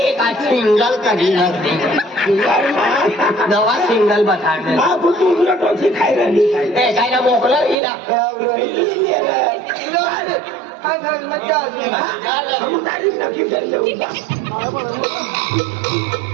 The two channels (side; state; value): left; drops out; at 7.8 s